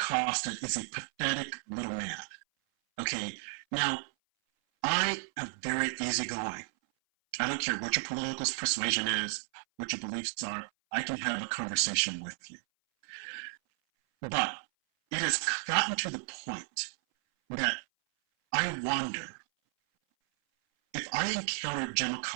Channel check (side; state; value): left; silent; 56 dB below the other